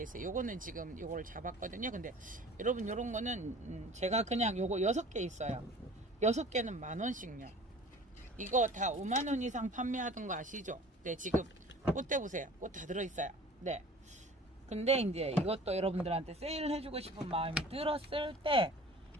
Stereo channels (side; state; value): both; normal; correlation 0.44